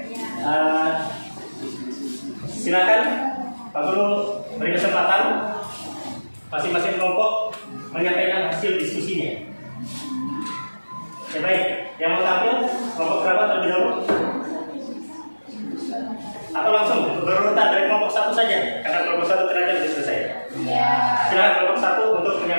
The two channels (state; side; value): inverted; both; correlation -1.00